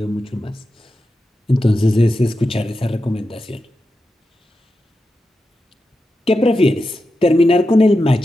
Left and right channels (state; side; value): normal; both; correlation 0.89